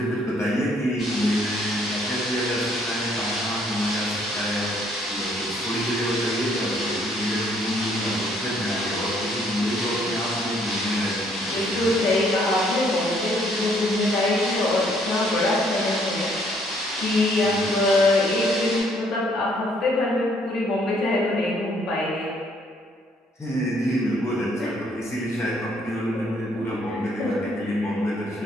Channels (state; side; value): normal; both; correlation 0.66